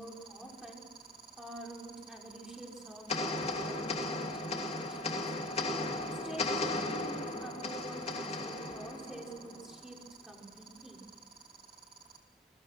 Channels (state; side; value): normal; both; correlation 0.35